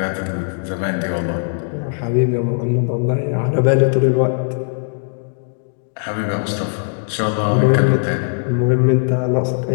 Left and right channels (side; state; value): right; silent; digital silence